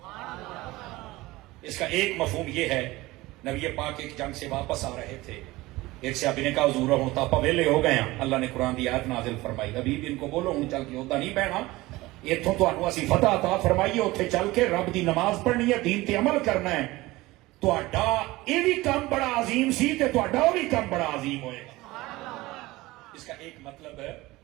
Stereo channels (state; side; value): quieter; left; 19.6 dB